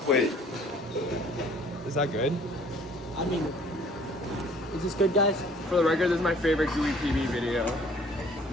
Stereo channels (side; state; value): both; normal; correlation 0.56